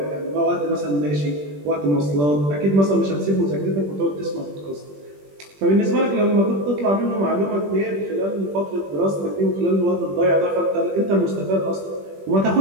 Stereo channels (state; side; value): late; left; 21 ms